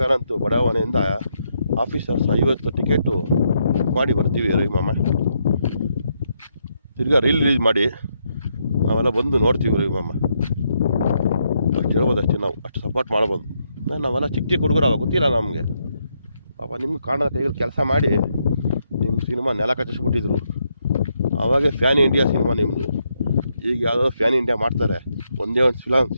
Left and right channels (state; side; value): inverted; both; correlation -0.78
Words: ಬಡಾವಣೆಯಿಂದ ಆಫೀಸರ್ಸ್ 50 ಟಿಕೆಟು ಮಾಡಿ ಬರ್ತೀವಿ ರವಿ ಮಾಮ. ತಿರ್ಗಾ ರಿಲೀಸ್ ಮಾಡಿ ನಾವೆಲ್ಲ ಬಂದು ನೋಡ್ತೀವಿ ರವಿ ಮಾಮ. ಅಷ್ಟು ಹೇಳ್ಬೋದು, ಅಷ್ಟೇ. ನಾವು ಅಷ್ಟು ಸಪೋರ್ಟ್ ಮಾಡ್ಬೋದು. ನಾವೆಲ್ಲ ಚಿಕ್ಕ ಚಿಕ್ಕ ಹುಡುಗರು ಅವಾಗ ಗೊತ್ತಿಲ್ಲ ನಮಗೆ. ಪಾಪ ನಿಮ್ಗೆ ಕಾಣದ ಕೈಗಳು ಕೆಲಸ ಮಾಡಿ ನಿಮ್ಮ ಸಿನಿಮಾ ನೆಲ ಕಚ್ಚಿಸ್ಬಿಟ್ಟಿದ್ರು. ಆವಾಗೇ ಫ್ಯಾನ್ ಇಂಡಿಯಾ ಸಿನಿಮಾ ನಿಮ್ಮದು. ಈಗ ಯಾವುದೋ ಫ್ಯಾನ್ ಇಂಡಿಯಾ ಮಾಡ್ತಾರೆ. ಒಂದೇ ಒಂದು